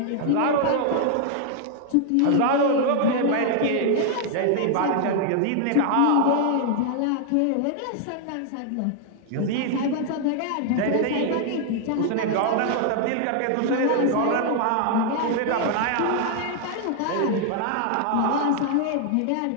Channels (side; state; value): both; different; correlation 0.00